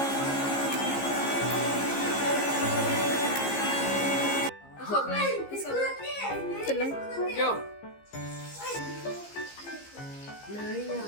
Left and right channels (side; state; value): right; late; 15 ms